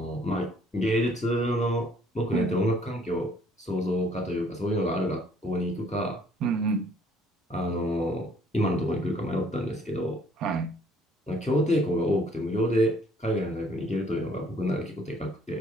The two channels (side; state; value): both; normal; correlation 0.61